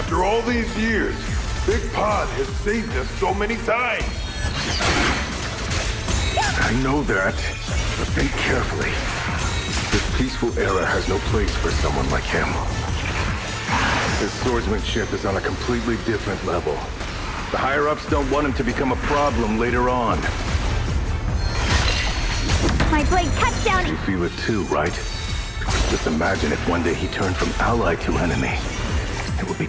all these years, Big Pod has saved us so many times. I know that, but think carefully. This peaceful era has no place for someone like him. His swordsmanship is on a completely different level. The higher-ups don't want him to become a problem later on. My blade cuts down. You feel it too, right? Just imagine if one day he turned from ally to enemy. It would be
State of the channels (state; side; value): identical; both; correlation 1.00